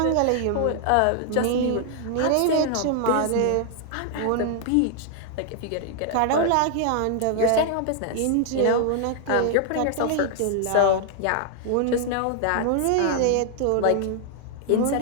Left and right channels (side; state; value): both; different; correlation 0.00